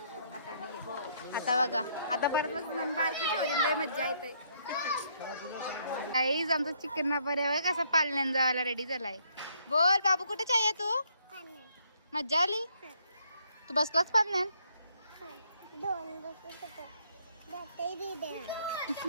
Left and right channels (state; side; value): inverted; both; correlation -0.70